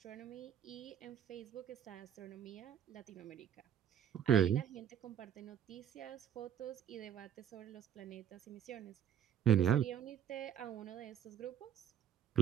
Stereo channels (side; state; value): left; quieter; 9.3 dB